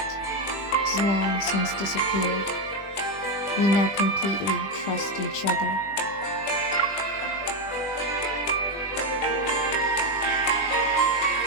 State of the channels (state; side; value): late; right; 20 ms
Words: has long since disappeared. We now completely trust each other.